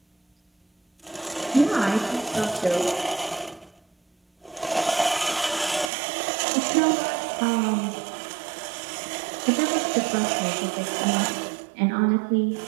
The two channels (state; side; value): drops out; left; at 5.9 s